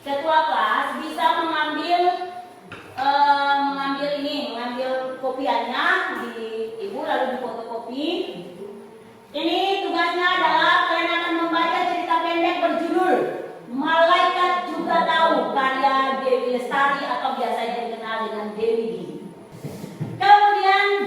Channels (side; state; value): both; identical; correlation 1.00